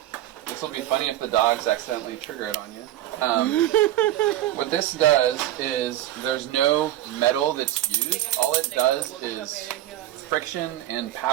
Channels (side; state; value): left; quieter; 13.7 dB